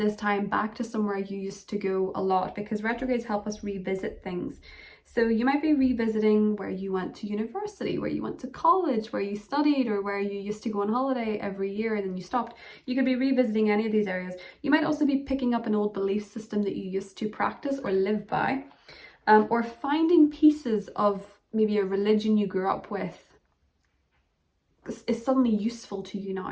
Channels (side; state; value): both; identical; correlation 1.00